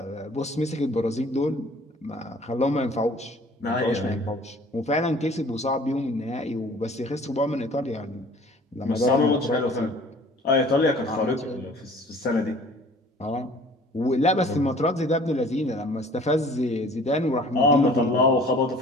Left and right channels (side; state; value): both; normal; correlation 0.50